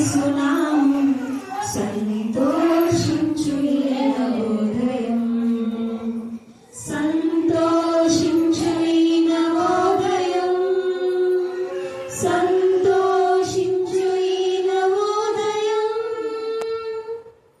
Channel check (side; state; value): both; identical; correlation 1.00